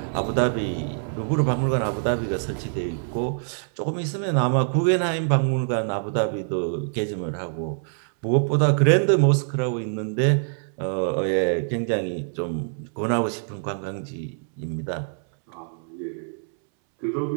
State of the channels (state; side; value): silent; left; 62 dB below the other